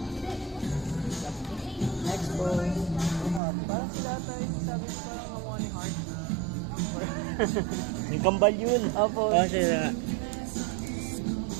Next pose. Parang sila tayo, sabi ko parang kamukha ni Heart. Yung kambal yun. Opo. Siya.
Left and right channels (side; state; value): left; drops out; at 3.4 s